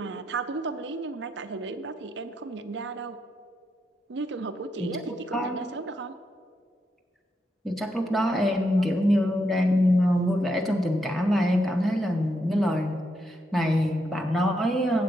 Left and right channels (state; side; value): normal; both; correlation 0.81